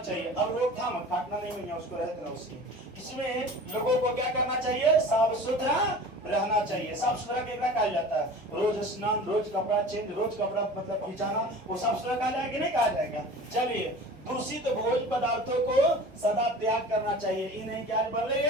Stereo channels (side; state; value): both; normal; correlation 0.39